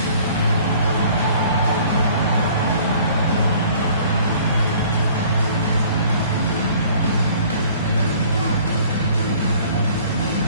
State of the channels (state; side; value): inverted; both; correlation -0.53